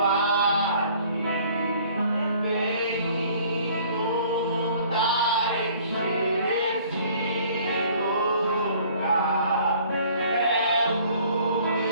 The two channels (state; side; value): inverted; both; correlation -0.55